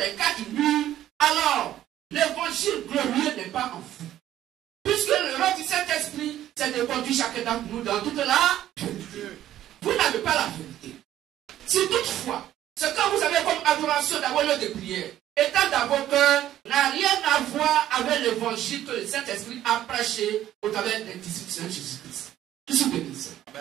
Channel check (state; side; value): quieter; left; 12.5 dB